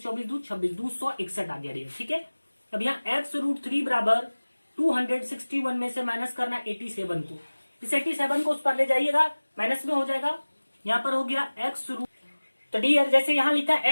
24 दू 26 261 आ गया डियर। ठीक है, अब यहाँ x √3 बराबर 261 में से माइनस करना 87 को, इस 87 को उस पर ले जाइएगा माइनस में हो जाएगा, यहाँ पर हो गया x √। तो डियर जैसे यहाँ लिखा है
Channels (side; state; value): both; inverted; correlation -1.00